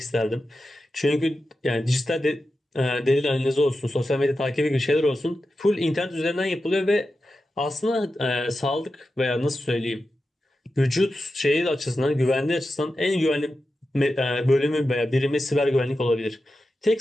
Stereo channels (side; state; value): both; normal; correlation 0.91